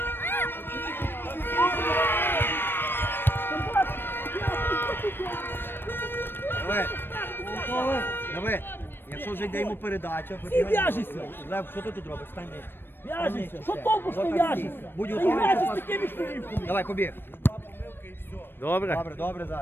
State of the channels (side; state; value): right; late; 0.099 ms